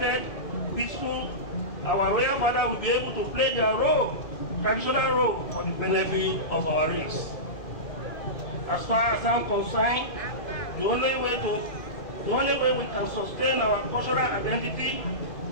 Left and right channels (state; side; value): late; right; 2.0 ms